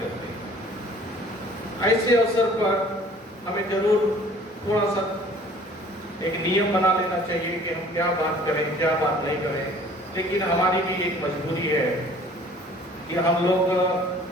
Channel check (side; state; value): both; normal; correlation 0.51